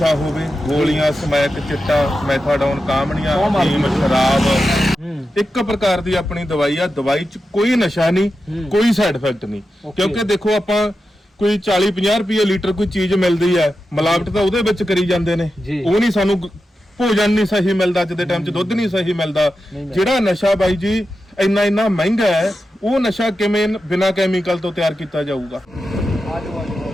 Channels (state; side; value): normal; both; correlation 0.90